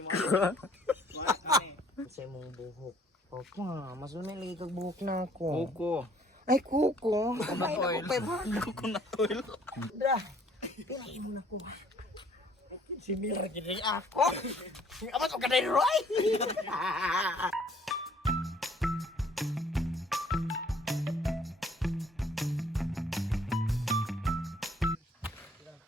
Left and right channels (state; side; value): normal; both; correlation 0.59